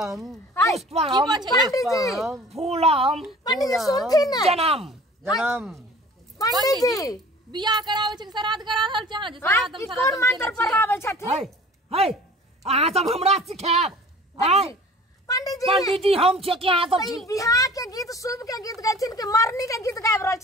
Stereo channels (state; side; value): normal; both; correlation 0.46